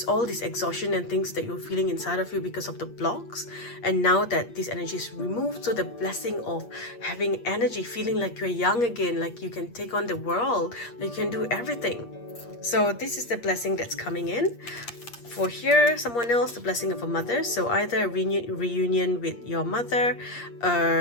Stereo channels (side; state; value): right; late; 8.5 ms